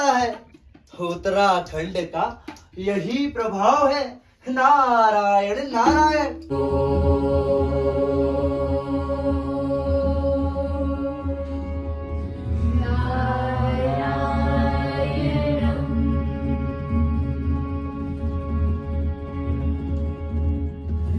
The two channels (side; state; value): both; identical; correlation 1.00